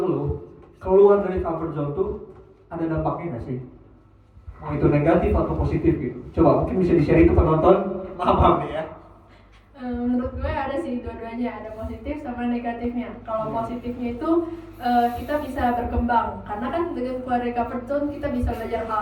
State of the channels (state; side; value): identical; both; correlation 1.00